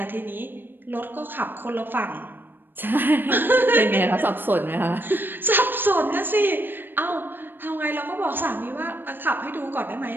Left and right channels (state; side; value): late; left; 0.095 ms